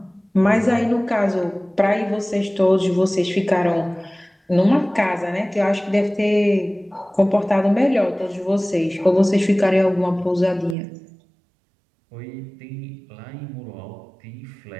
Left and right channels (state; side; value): drops out; left; at 10.8 s